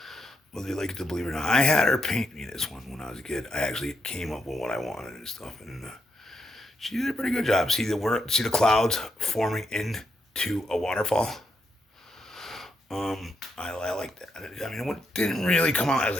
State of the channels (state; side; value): normal; both; correlation 0.80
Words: you like it to believe it or not. I had her paint me this one when I was a kid. I actually came up with what I wanted and stuff, and she did a pretty good job. See the clouds forming into a waterfall. I like that. I mean, it didn't really come out as